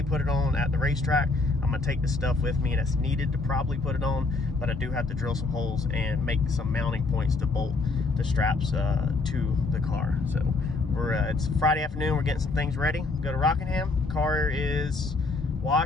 put it on at the racetrack. I'm going to take the stuff with me that's needed to probably put it on, but I do have to drill some holes and make some mounting points to bolt the straps to the car. So it's Friday afternoon. We're getting some things ready. Go to Rockingham. Car is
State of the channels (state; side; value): quieter; right; 3.6 dB